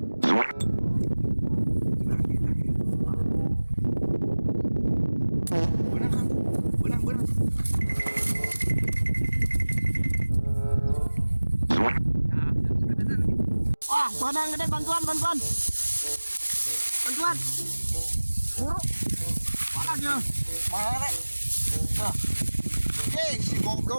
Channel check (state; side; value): inverted; both; correlation -1.00